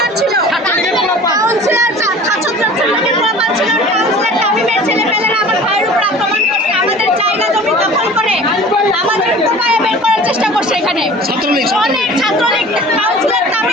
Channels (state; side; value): normal; both; correlation 0.43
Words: ছিল, কাউন্সিলর ছাত্রছাত্রীদের প্রমাণ ছিল, কাউন্সিলর তামিমের ছেলেপেলেরা আমার ভাইয়ের উপর আক্রমণ করছে, আমাদের জায়গা জমি দখল করে আমাদের কোপায় বের করার চেষ্টা করছে। এখানে অনেক ছাত্রলীগ কাউন্সিলর